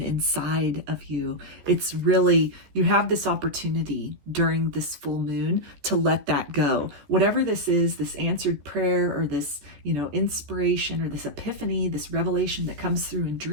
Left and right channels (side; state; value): left; late; 14 ms